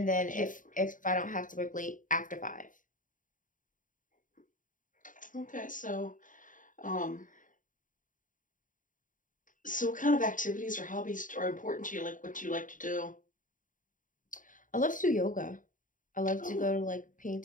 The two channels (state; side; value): late; right; 0.38 ms